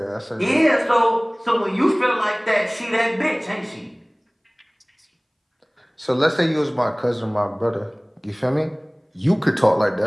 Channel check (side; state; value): both; identical; correlation 1.00